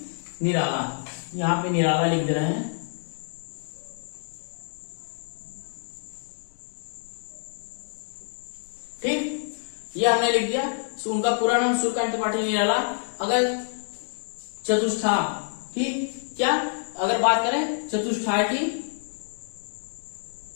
निराला, यहां पे निराला लिख दे रहे हैं। ठीक, ये हमने लिख दिया। उनका पूरा नाम सूर्यकांत त्रिपाठी निराला। अगर चतुष्ठाय, ठीक, क्या अगर बात करें चतुष्ठाय की,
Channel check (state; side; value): silent; right; digital silence